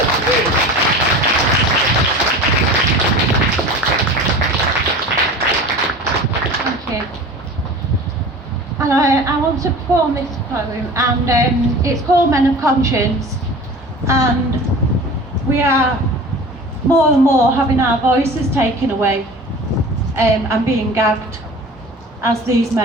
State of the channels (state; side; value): normal; both; correlation 0.38